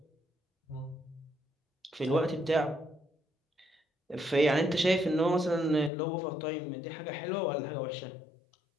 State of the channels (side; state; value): right; drops out; at 5.9 s